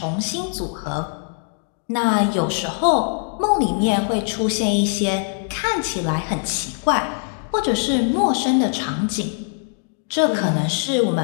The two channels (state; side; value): silent; right; 64 dB below the other